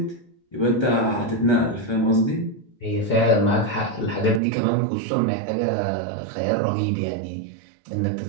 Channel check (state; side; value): drops out; left; at 4.4 s